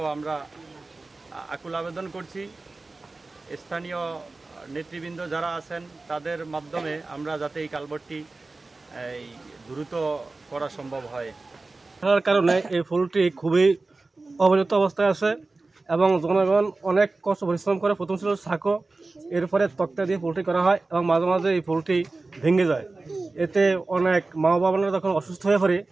আমরা আকুল আবেদন করছি। স্থানীয় নেতৃবৃন্দ যারা আছেন তাদের মাধ্যমে আমরা যাতে এই কালভার্টটি দ্রুত করা সম্ভব হয়। তার কারণে এই পুলটি খুবই অবহেলিত অবস্থায় আছে এবং জনগণ অনেক কষ্ট পরিশ্রম করে। প্রথম ছিল সাঁকো, এরপরে তক্তা দিয়ে পুলটি করা হয় এবং মাঝে মাঝে এই পুলটি ভেঙে যায়। এতে অনেক মা বাবারা যখন অসুস্থ হয়ে পড়ে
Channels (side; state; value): left; quieter; 3.4 dB